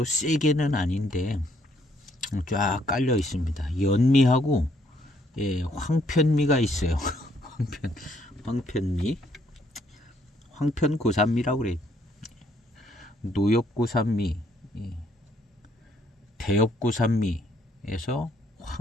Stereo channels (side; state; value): both; normal; correlation 0.69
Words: 세게는 아닌데 쫙 깔려 있습니다. 연미하고 황편미가 있어요. 황편미, 황편고산미라고 그래요. 노엽고산미, 대엽고산미에서